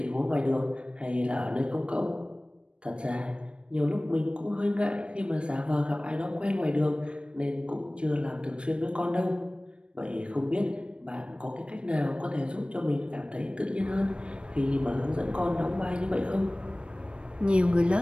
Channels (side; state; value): left; late; 0.057 ms